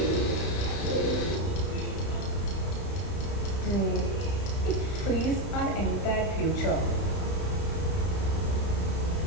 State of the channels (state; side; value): late; right; 31 ms